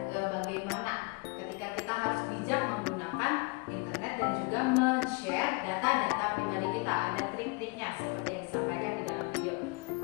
bagaimana ketika kita harus bijak menggunakan internet dan juga men-share data-data pribadi kita. Ada trik-triknya seperti yang disampaikan di dalam video.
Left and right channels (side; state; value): right; quieter; 29.3 dB